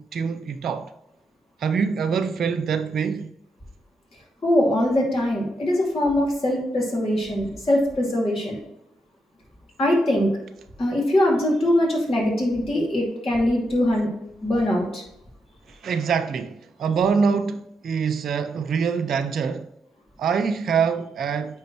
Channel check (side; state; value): both; normal; correlation 0.82